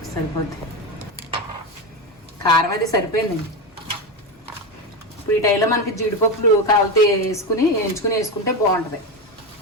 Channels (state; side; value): normal; both; correlation 0.15